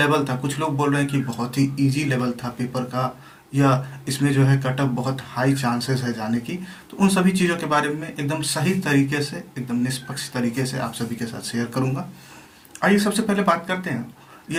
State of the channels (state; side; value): identical; both; correlation 1.00